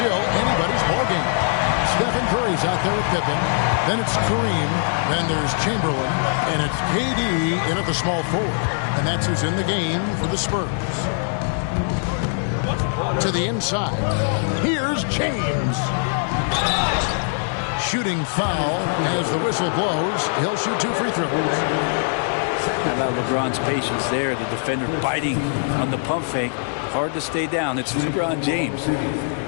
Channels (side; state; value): right; silent; 63 dB below the other